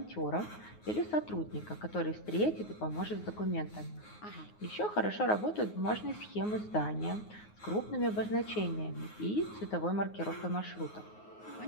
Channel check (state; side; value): late; right; 9.5 ms